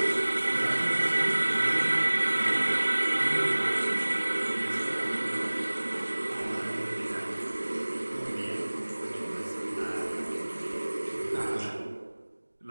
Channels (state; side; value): inverted; both; correlation -1.00